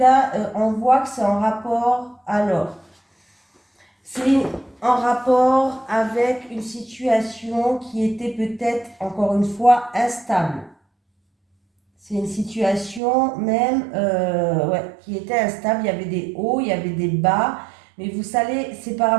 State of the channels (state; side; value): drops out; left; at 13.0 s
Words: on voit que c'est en rapport, alors, c'est en rapport avec une situation qui était peut-être, encore une fois, instable. C'est une situation même qui était instable. Il y avait des hauts, il y avait des bas. Mais vous savez, c'est par